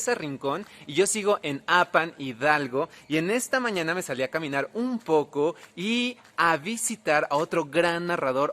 Rincón, y yo sigo en Apan, Hidalgo, y en esta mañana me salí a caminar un poco y a visitar a otro gran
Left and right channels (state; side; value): identical; both; correlation 1.00